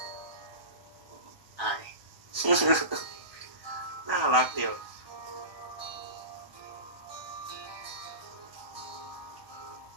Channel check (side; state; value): left; late; 1.2 ms